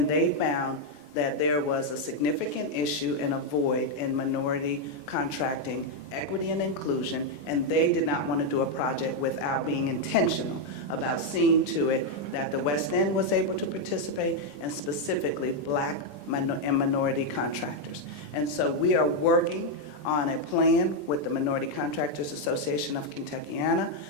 they found that there was a significant issue and a void in minority contracting, equity and inclusion, and they did not want to do a project without being intentional about seeing to it that the West End was able to participate, and specifically Black and minority contractors. And so we are working on a plan with the Minority Contractors Association of Kentuckiana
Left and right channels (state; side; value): late; right; 21 ms